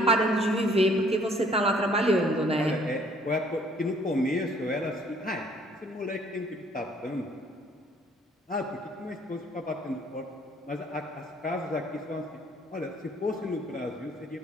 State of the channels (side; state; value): both; normal; correlation 0.60